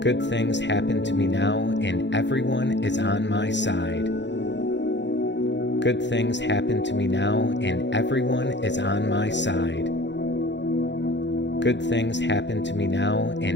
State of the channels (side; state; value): right; late; 0.52 ms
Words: Good things happen to me now, and everyone is on my side. Good things happen to me now, and everyone is on my side. Good things happen to me now,